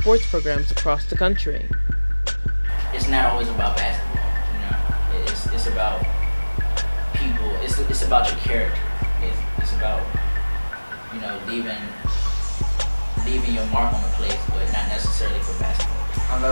programs across the country. It's not always about basketball, It's about people. It's about your character. It's about leaving your mark on the place, but not necessarily for basketball. I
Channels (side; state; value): both; inverted; correlation -1.00